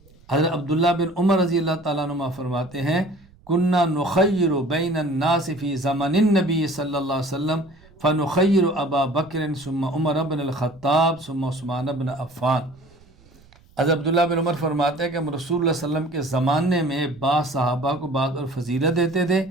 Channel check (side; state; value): right; noise; rumble, 28 dB below the sound